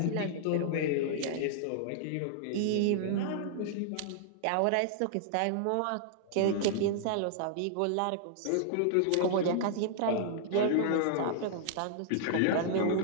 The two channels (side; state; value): both; different; correlation -0.01